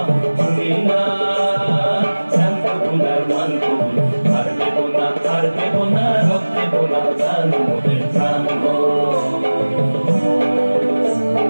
তুমি না জানতো গুনার মান কবুল আর দেবো না রব দেবো না জান মোদের প্রাণ গো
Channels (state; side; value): inverted; both; correlation -1.00